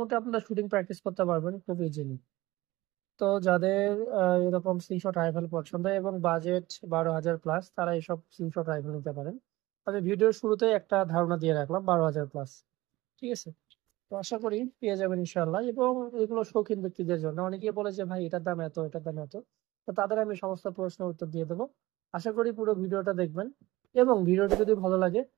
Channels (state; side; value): quieter; left; 19.0 dB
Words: আপনারা শুটিং প্র্যাকটিস করতে পারবেন খুব ইজিলি। তো যাদের এরকম স্ক্রিনশট রাইফেল পছন্দ এবং বাজেট 12,000 প্লাস, তারা এইসব স্ক্রিনশট রাইফেল নিতে পারেন। আমি ভিডিওর শুরুতে একটা ধারণা দিয়ে রাখলাম 12,000 প্লাস। ঠিক আছে, তো আশা করি পেয়ে যাবেন ইনশাল্লাহ। এবং এগুলো শৌখিন ব্যক্তিদের জন্য। অনেকে বলে যে ভাই এটার দাম এত, এটার দাম এত। তো তাদের আমি সমস্ত প্রশ্নের উত্তর দিয়ে দেবো। আশা করি পুরো ভিডিওটা দেখবেন এবং ভিডিওটি যদি ভালো লাগে